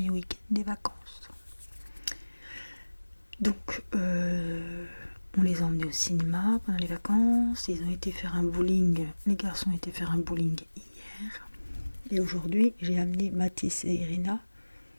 week-end des vacances. Donc, on les a emmenés au cinéma pendant les vacances. Ils ont été faire un bowling. Les garçons ont été faire un bowling hier. Et aujourd'hui, j'ai amené Mathis et Irina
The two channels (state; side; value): inverted; both; correlation -1.00